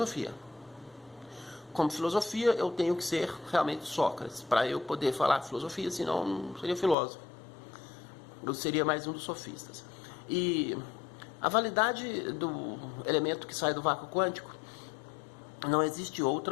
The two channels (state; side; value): drops out; right; at 7.0 s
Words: Como filosofia, eu tenho que ser realmente Sócrates, para eu poder falar filosofia, senão não seria filósofo. Eu seria mais um dos sofistas. E a validade do elemento que sai do vácuo quântico, não existe